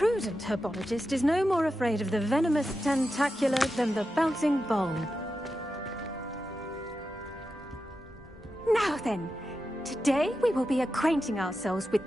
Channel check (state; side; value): normal; both; correlation 0.90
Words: herbologist is no more afraid of the venomous tentacula than the bouncing bowl. Now then, today we will be acquainting ourselves with